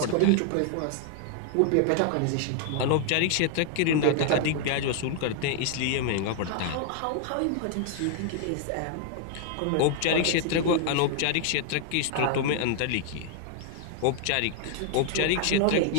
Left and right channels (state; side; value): different; both; correlation 0.00